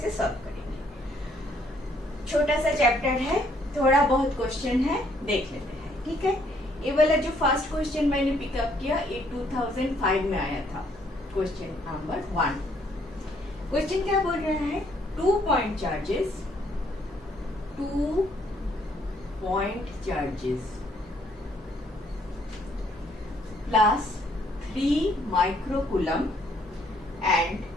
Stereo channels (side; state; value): both; normal; correlation 0.67